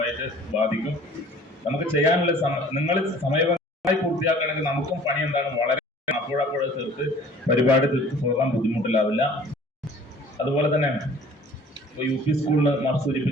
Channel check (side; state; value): both; normal; correlation 0.50